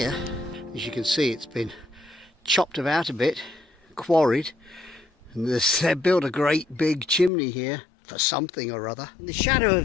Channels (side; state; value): right; drops out; at 7.3 s